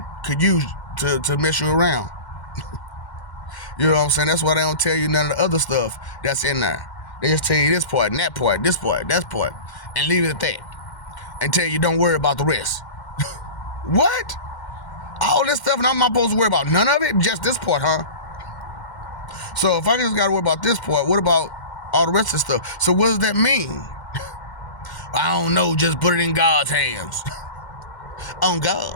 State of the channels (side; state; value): right; late; 2.1 ms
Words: could use to mess you around. You know what I'm saying? That's why they don't tell you none of the other stuff that's in there. They just tell you this part and that part, this part, that part, and leave it at that. And tell you don't worry about the rest. What? All this stuff and I'm not supposed to worry about none of it? Just this part, huh? So if I just got to worry about this part, what about all the rest of the stuff? So what does that mean? I don't know, just put it in God's hands. On